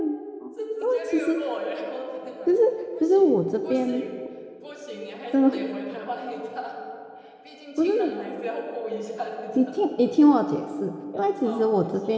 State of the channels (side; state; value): both; identical; correlation 1.00